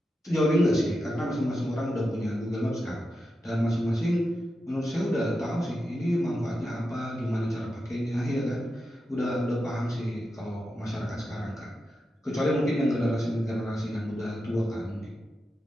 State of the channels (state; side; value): normal; both; correlation 0.89